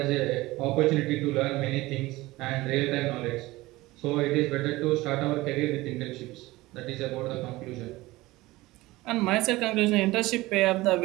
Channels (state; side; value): quieter; left; 19.4 dB